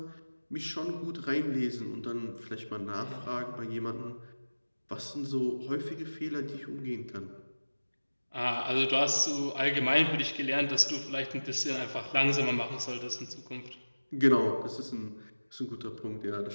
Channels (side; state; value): both; inverted; correlation -1.00